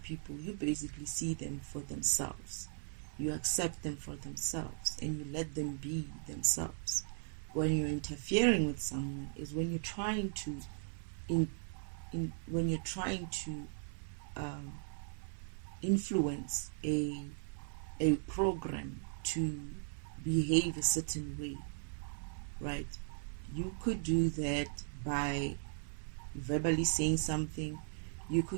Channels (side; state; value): left; silent; 53 dB below the other